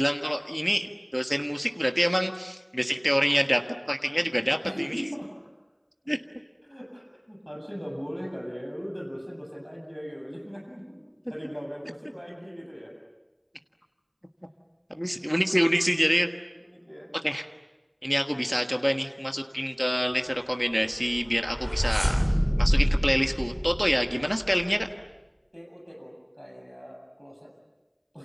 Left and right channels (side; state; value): both; identical; correlation 1.00